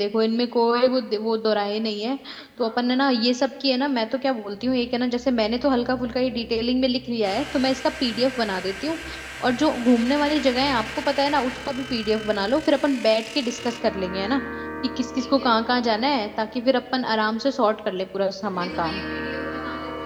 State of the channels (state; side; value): identical; both; correlation 1.00